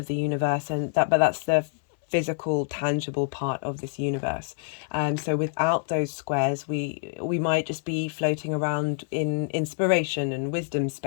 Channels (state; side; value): silent; right; 61 dB below the other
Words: the universe, but that's the physical, tangible part of this universe. So without those squares, we might just be floating around in inspiration and wisdom